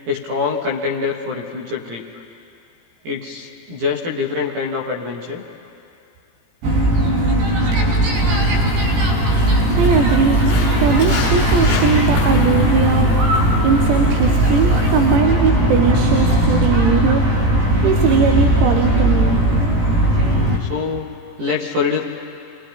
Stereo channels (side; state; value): left; late; 18 ms